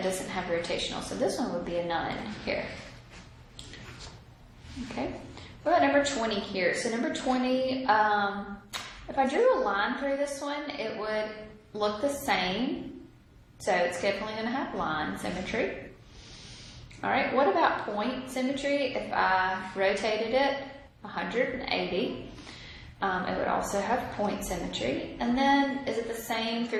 doesn't have rotational. So this one would be a none here. Okay. What about number 20 here? So number 20, if I drew a line through this one, it would look the same. So it's definitely going to have line symmetry. All right. What about point symmetry? If I rotated it 180, it would also have point symmetry. And then is it the same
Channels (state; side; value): identical; both; correlation 1.00